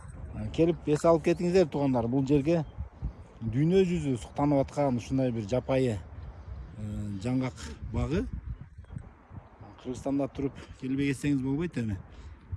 Келип эс алып кетиңиздер туугандар, бул жерге дүйнө жүзү суктанып аткан ушундай бир жапайы жаңгак багы. Кыргызстанда туруп келбей кетсеңиз болбойт эми.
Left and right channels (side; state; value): both; identical; correlation 1.00